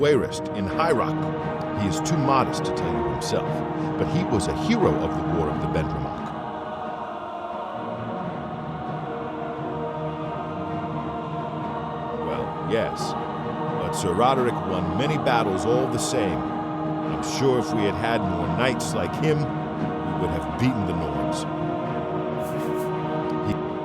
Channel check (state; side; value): identical; both; correlation 1.00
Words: in High Rock. He is too modest to tell you himself, but he was a hero of the War of the Bendramak. Well, yes, but Sir Roderick won many battles all the same. I'm sure if we had had more knights like him, we would have beaten the Nords.